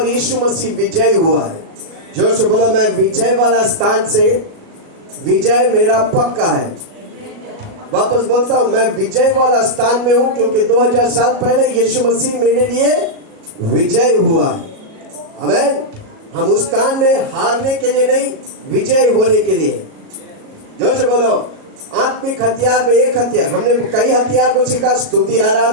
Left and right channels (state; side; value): late; left; 37 ms